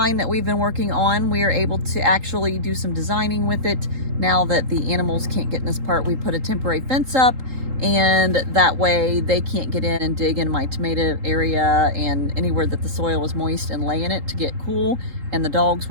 that we've been working on. We are able to actually do some designing with it now that the animals can't get in this part. We put a temporary fence up, and that way they can't get in and dig in my tomato area and anywhere that the soil was moist and lay in it to get cool. And the dogs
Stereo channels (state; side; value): late; left; 3.8 ms